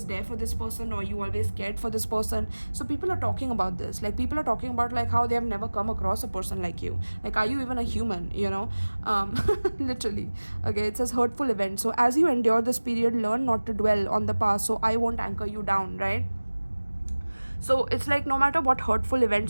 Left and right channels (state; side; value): inverted; both; correlation -1.00